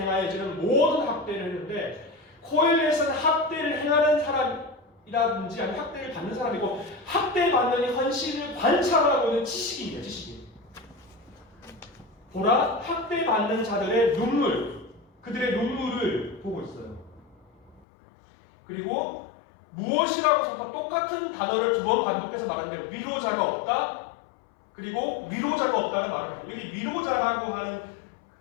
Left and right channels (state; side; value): drops out; right; at 17.9 s